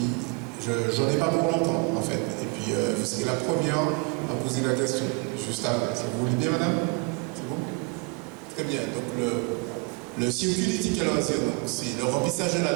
j'en ai pas pour longtemps, en fait. Et puis, vous serez la première à poser la question, juste après. Si vous voulez bien, madame? C'est bon? Très bien. Donc, le circuit du ticket loisir, c'est le remplissage de la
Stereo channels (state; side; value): quieter; left; 29.8 dB